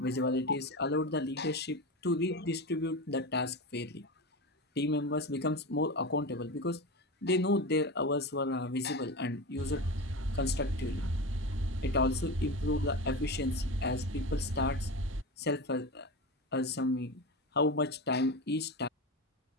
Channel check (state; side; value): normal; both; correlation 0.23